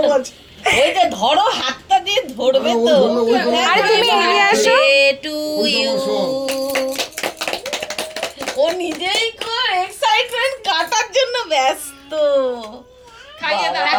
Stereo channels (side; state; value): both; identical; correlation 1.00